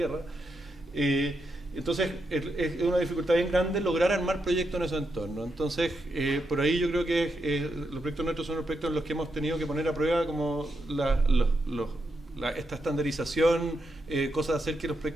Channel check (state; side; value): normal; both; correlation 0.83